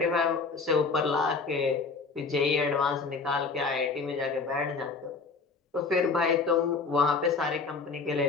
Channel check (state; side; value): quieter; right; 4.5 dB